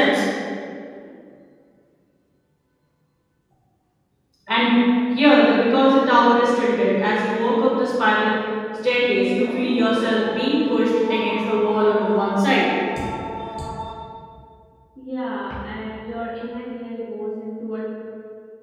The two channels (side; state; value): both; identical; correlation 1.00